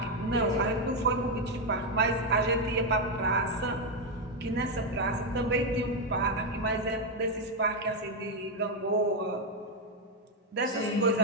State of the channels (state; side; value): normal; both; correlation 0.04